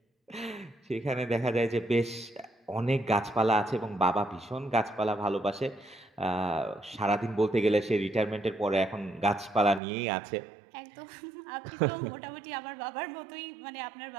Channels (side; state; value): left; drops out; at 9.8 s